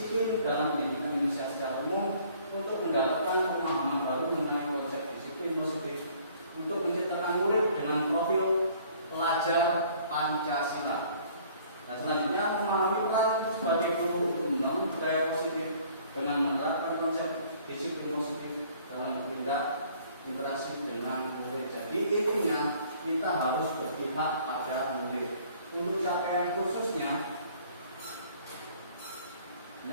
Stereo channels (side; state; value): both; inverted; correlation -0.56